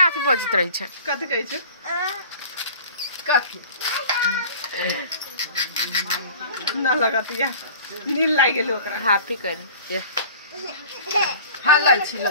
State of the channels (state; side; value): inverted; both; correlation -0.44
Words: अथी बजित रही छै कथि कहै छै कथि न लगतिया नील लाग गेल ओकरा हैप्पी कर ये हल्ला छिल